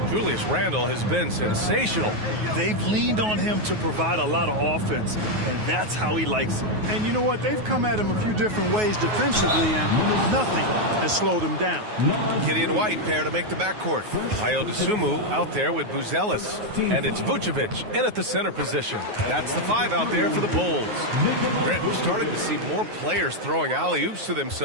Julius Randle has been sensational. They've leaned on him to provide a lot of offense, and that's how he likes it. And you know what? They've come at him a few different ways defensively, and nothing has slowed him down. Gideon White pair to make the backcourt. Ayo Dosunmu out there with Buzelis. And it's Vucevic in at the center position. That's the 5 out there for the Bulls. Grant, we're starting to see more players throwing alley-oops to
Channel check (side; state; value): left; late; 9.4 ms